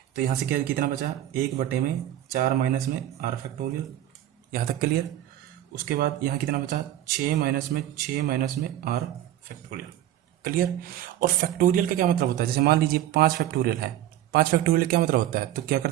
तो यहाँ से क्या कितना बचा 1 बटे में 4 माइनस में r फैक्टोरियल, यहाँ तक क्लियर। उसके बाद यहाँ कितना बचा 6 माइनस में 6 माइनस में r फैक्टोरियल। क्लियर? और फैक्टोरियल का क्या मतलब होता है, जैसे मान लीजिए 5 फैक्टोरियल है, 5 फैक्टोरियल क्या मतलब होता है, तो क्या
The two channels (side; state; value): left; quieter; 12.6 dB